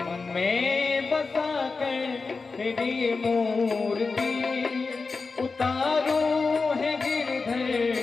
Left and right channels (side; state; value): right; quieter; 4.3 dB